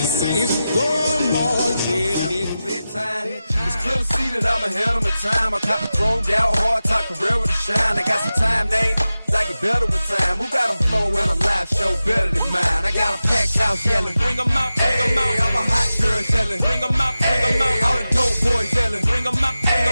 saints go marching in. bedtime. It's clear to see that I'm ahead of my time. I cop the chromed out, hard top career with a shine. I got some time, name. I get better with time. Who got a flow and a live show better than mine? I got a packed house yelling. Bring 'em out, bring 'em out. I'm a hot girl yelling. Bring 'em out, bring 'em out. All the dope boys yelling. Bring 'em out, bring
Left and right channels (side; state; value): both; inverted; correlation -0.93